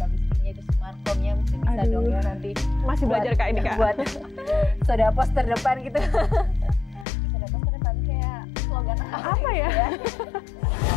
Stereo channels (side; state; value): right; drops out; at 7.1 s